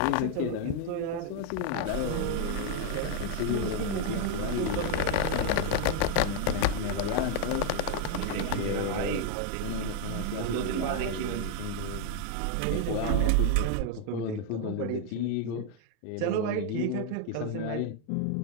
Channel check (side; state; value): both; different; correlation 0.00